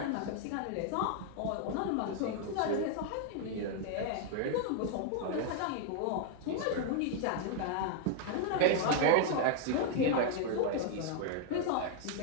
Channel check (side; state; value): both; different; correlation 0.00